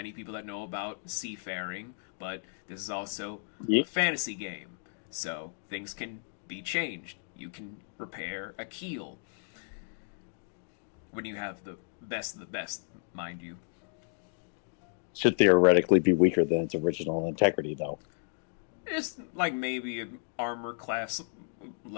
people that know about seafaring, but this is also a fantasy game, so things can be changed. You can repair a keel when you have the best of the best, mind you. Should theoretically be weaker than its original integrity, though. It's like maybe an armor class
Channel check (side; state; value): right; silent; digital silence